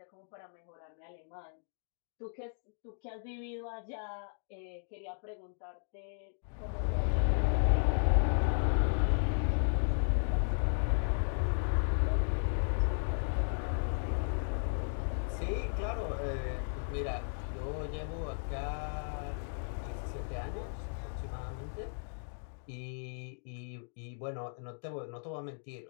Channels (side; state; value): right; silent; digital silence